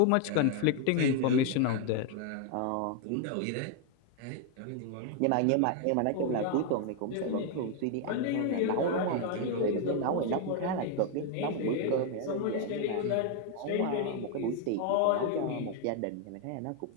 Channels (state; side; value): different; both; correlation 0.00